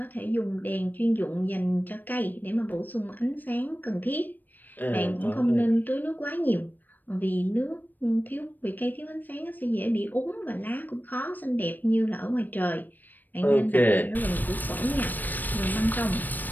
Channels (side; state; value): right; late; 0.089 ms